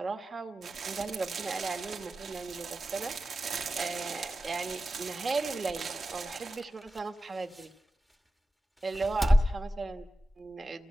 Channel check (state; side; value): normal; both; correlation 0.93